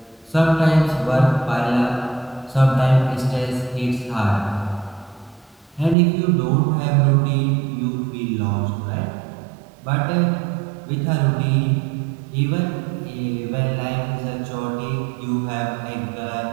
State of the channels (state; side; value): drops out; left; at 6.0 s